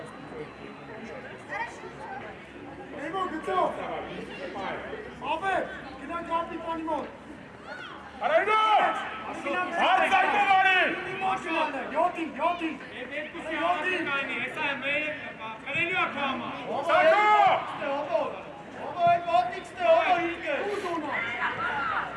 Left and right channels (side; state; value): both; identical; correlation 1.00